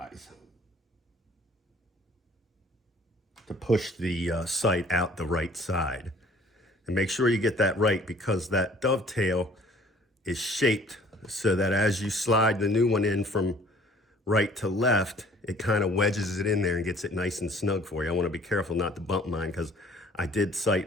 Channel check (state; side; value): normal; both; correlation 0.55